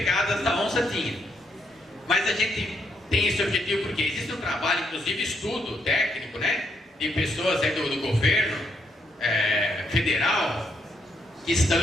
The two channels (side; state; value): both; normal; correlation 0.75